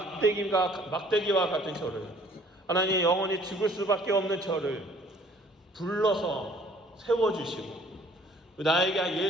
같은 저를, 하나님 영원히 죽을 수밖에 없는 저를 불러서 세워주시고 나에게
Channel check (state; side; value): normal; both; correlation 0.57